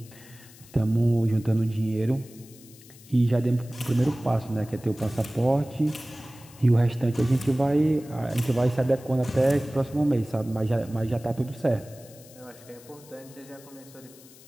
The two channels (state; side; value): noise; left; hiss, 22 dB below the sound